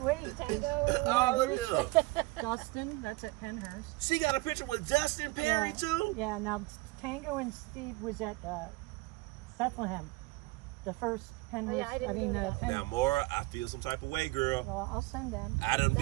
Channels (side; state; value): left; quieter; 22.5 dB